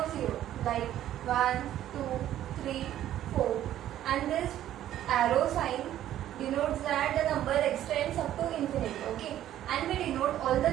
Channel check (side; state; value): left; quieter; 12.2 dB